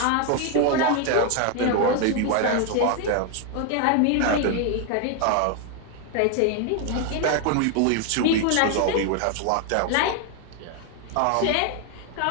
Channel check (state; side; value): different; both; correlation 0.01